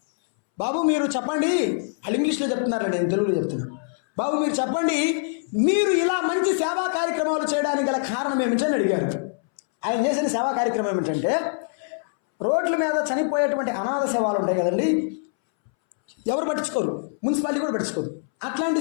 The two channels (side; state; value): right; silent; 63 dB below the other